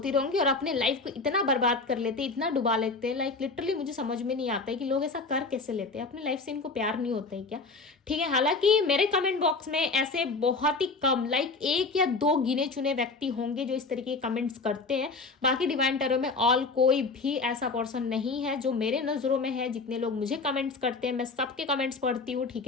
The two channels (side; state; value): right; quieter; 3.9 dB